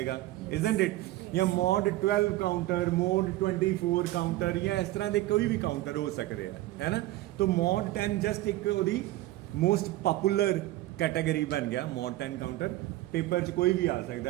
ਇਜ਼ਨਟ ਇਟ। ਜਾਂ ਮੋਡ 12 ਕਾਊਂਟਰ, ਮੋਡ 24 ਕਾਊਂਟਰ, ਜਾਂ ਇਸ ਤਰ੍ਹਾਂ ਦੇ ਕੋਈ ਵੀ ਕਾਊਂਟਰ ਹੋ ਸਕਦੇ ਆ, ਹੈ ਨਾ। ਤਾਂ ਮੋਡ 10 ਜਸਟ ਇੱਕ ਉਹਦੀ ਮੋਸਟ ਪਪੂਲਰ ਕੈਟਾਗਰੀ ਬਣ ਗਿਆ ਮੋਡ 10 ਕਾਊਂਟਰ। ਪੇਪਰ 'ਚ ਕੋਈ ਵੀ ਆ ਸਕਦਾ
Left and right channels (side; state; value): left; quieter; 16.6 dB